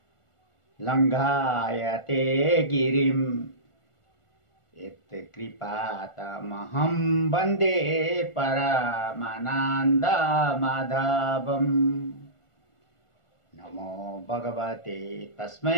लङ्घायते गिरिम् यत्कृपातमहं वन्दे परमानन्दमाधवम्। नमो भगवते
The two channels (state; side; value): late; right; 1.4 ms